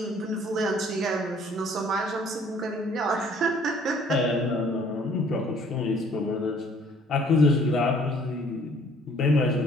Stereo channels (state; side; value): normal; both; correlation 0.57